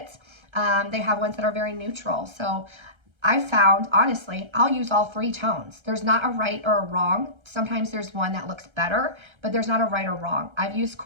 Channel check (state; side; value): late; left; 1.3 ms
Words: They have ones that are very neutral. So I found, honestly, I'll use all three tones. There's not a right or a wrong. Sometimes there's one that looks better, but there's not a right or wrong. I've used